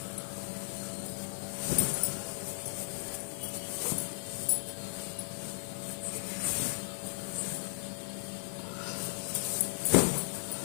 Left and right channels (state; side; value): silent; right; digital silence